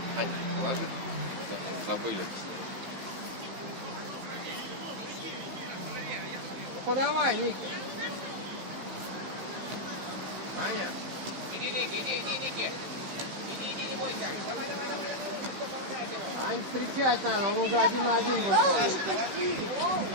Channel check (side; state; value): left; late; 16 ms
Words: Положи. Забыли. Ну подавай, Ники. Ань, встречать надо, он уже 1 на 1 выходит.